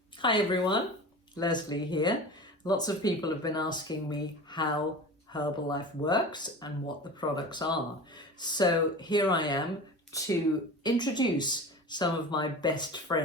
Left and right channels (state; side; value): normal; both; correlation 0.33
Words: Hi everyone, Leslie here. Lots of people have been asking me how Herbalife works and what the products are. So here I am to introduce some of my best